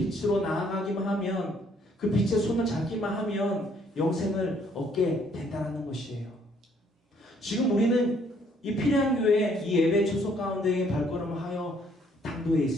나아가기만 하면, 그 빛의 손을 잡기만 하면 영생을 얻게 된다는 것이에요. 지금 우리는 이 피레안 교회 이 예배 초소 가운데에 발걸음을 하여 당도에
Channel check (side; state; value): both; normal; correlation 0.65